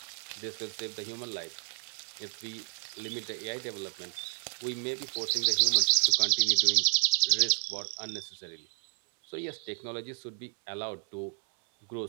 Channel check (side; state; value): left; silent; 57 dB below the other